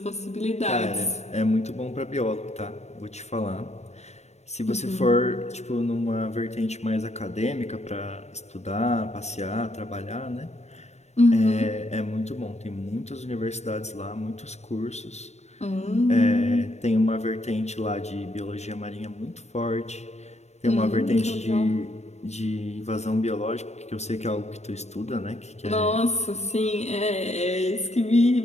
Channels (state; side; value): late; right; 0.32 ms